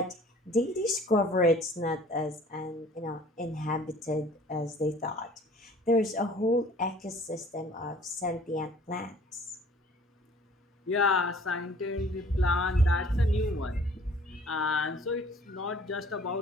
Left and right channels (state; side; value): normal; both; correlation 0.52